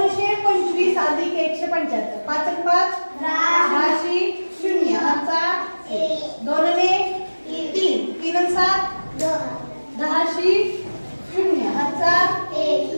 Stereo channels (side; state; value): both; inverted; correlation -1.00